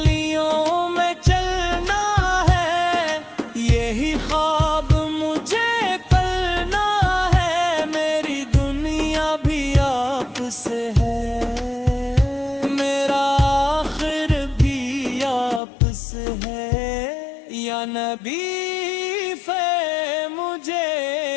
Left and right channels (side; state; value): right; drops out; at 15.6 s